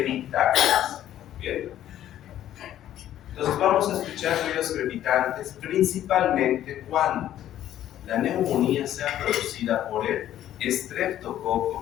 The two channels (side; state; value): right; quieter; 12.0 dB